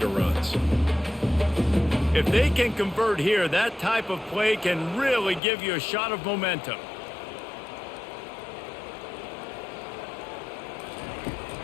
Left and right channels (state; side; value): drops out; right; at 5.4 s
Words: runs. If they can convert here, that type of play can really give you a shot of momentum.